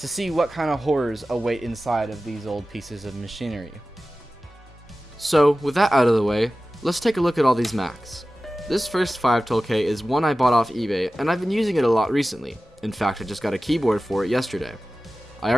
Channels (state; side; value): normal; both; correlation 0.95